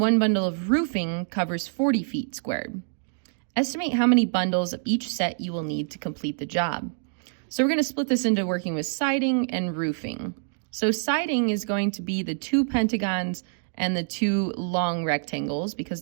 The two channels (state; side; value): silent; left; digital silence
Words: 1 bundle of roofing covers 40 feet squared. Estimate how many bundles of each set you will need to complete the job. So we're going to split this into working with siding and roofing. So siding is going to be the 2 pentagons and the 2 long rectangles,